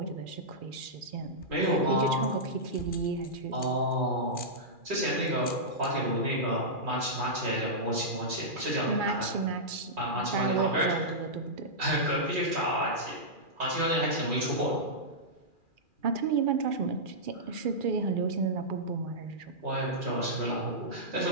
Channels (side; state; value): left; late; 2.4 ms